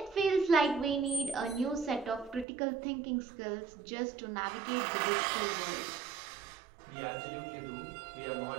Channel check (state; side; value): drops out; left; at 2.5 s